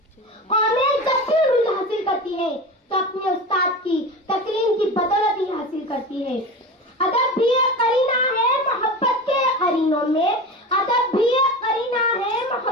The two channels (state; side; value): normal; both; correlation 0.28